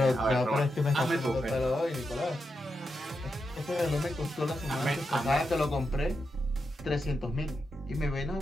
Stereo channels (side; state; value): both; normal; correlation 0.86